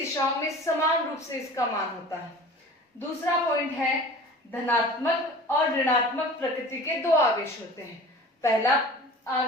में समान रूप से इसका मान होता है। दूसरा पॉइंट है धनात्मक और ऋणात्मक प्रकृति के दो आवेश होते हैं।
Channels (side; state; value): both; normal; correlation 0.41